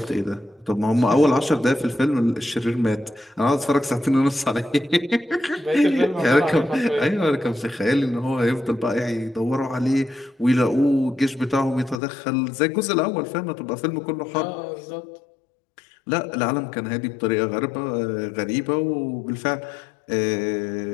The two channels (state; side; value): drops out; right; at 12.0 s